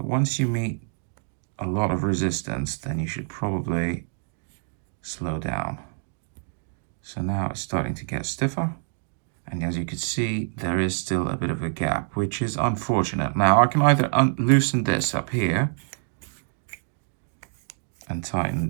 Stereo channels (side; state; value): left; silent; 61 dB below the other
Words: once you meet a lot of resistance, then you should probably slow down. So now it's starting to get stiffer. And as you can see, there is still a bit of a gap, which is unfortunate. Now I can either loosen this up here and